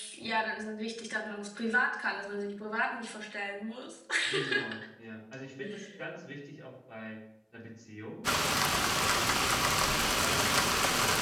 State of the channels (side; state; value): both; identical; correlation 1.00